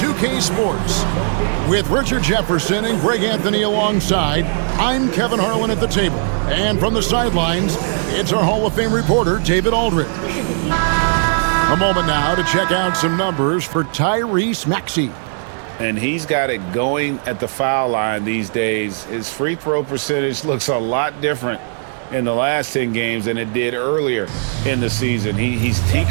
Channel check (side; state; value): left; silent; 60 dB below the other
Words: Sports. With Richard Jefferson and Greg Anthony alongside, I'm Kevin Harlan at the table. And from the sidelines, it's our Hall of Fame reporter, David Aldridge. A moment now to check out some numbers for Tyrese Maxey. And he's got it going at the foul line these days. His free throw percentage looks a lot different in the last 10 games than it did earlier in the season. He's